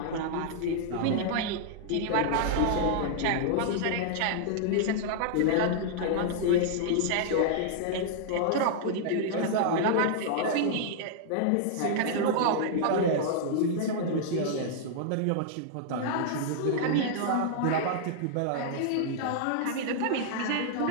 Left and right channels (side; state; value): both; different; correlation -0.01